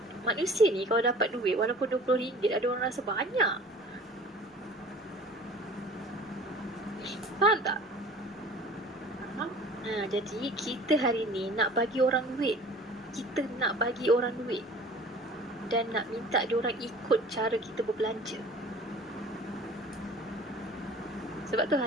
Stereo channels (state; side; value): normal; both; correlation 0.45